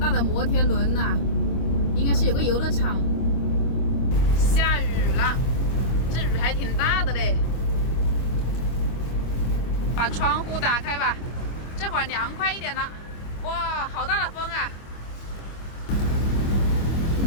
的摩天轮呐，应该是有个游乐场。下雨了，这雨还挺大的嘞。把窗户打开吧，这会儿凉快一点了。哇，好大的风啊！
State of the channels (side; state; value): right; late; 25 ms